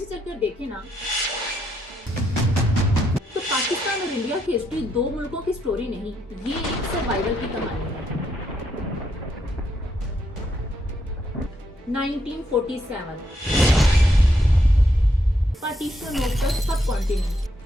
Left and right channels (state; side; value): normal; both; correlation 0.78